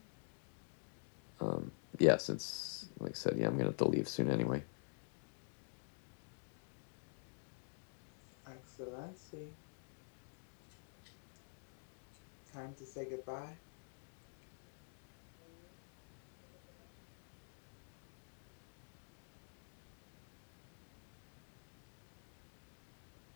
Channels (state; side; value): silent; right; digital silence